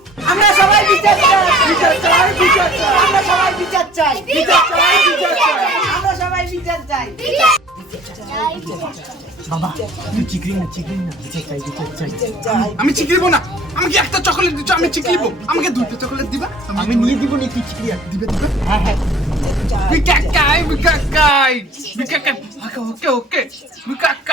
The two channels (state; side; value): normal; both; correlation 0.50